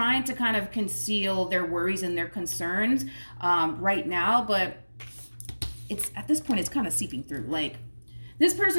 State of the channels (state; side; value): inverted; both; correlation -1.00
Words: to kind of conceal their worries and their concerns right now, but it's at this point, it's kind of seeping through. Like, This